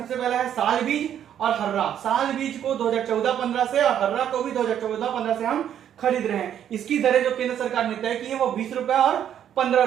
पहला है साल बीज और हर्रा। साल बीज को 2014-15 से और हर्रा को भी 2014-15 से हम खरीद रहे हैं। इसकी दरें जो केंद्र सरकार ने तय की है वो 20 रुपए और 15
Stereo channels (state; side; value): quieter; left; 9.9 dB